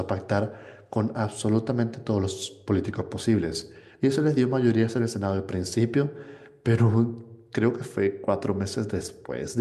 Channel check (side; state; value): both; identical; correlation 1.00